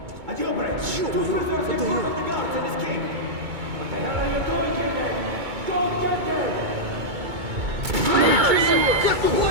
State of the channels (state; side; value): late; left; 2.2 ms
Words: A jailbreak. Two prisoners in front of the guards and escape. What the hell are you doing here then? Go get them!